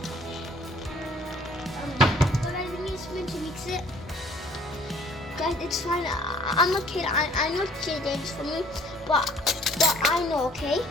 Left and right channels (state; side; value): normal; both; correlation 0.57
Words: But I need a spoon to mix it. Guys, it's fine. I'm a kid. I know it's dangerous for me, but I know. Okay.